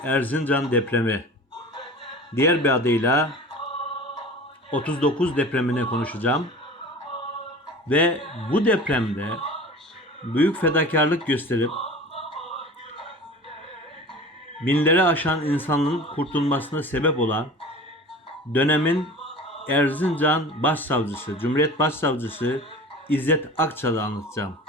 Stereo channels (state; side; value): normal; both; correlation 0.38